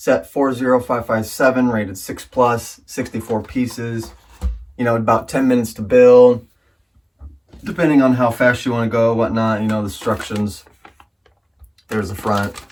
40557, rated 6+, 64 pieces. You know, about 10 minutes to build, depending on how fast you want to go, whatnot. You know, the instructions. There's the front.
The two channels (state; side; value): identical; both; correlation 1.00